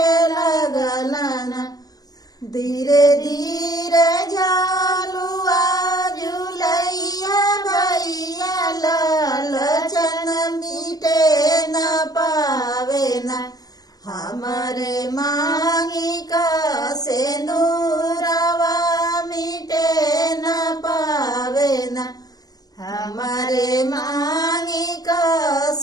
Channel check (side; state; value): right; late; 0.18 ms